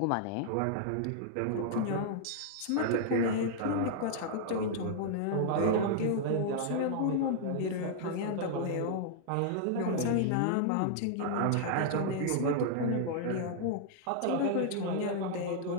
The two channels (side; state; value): both; different; correlation -0.01